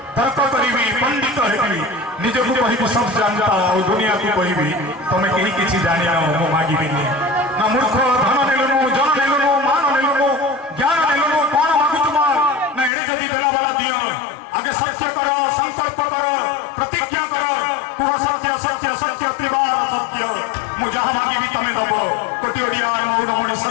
तर्क करिबी पंडित हेबी निजको कहिबी सब जानता और दुनिया को कहिबी तमे केही किछि जानि न मो मागिबिनी ना मूर्ख धन नेलनु जन नेलनु मान नेलनु ज्ञान नेलनु कोन मागु तुमा ना एडे जदी देला वाला दियो आगे सत्य करो संकल्प करो प्रतिज्ञा करो कुह सत्य सत्य सत्य त्रिवार सत्य मु जहां मागिबी तमे दबो कोटि ओडिया मौडमणि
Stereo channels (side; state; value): right; drops out; at 12.9 s